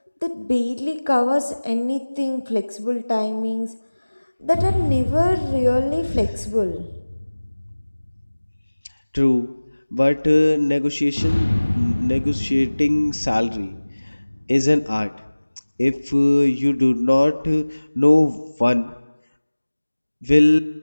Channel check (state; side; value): inverted; both; correlation -1.00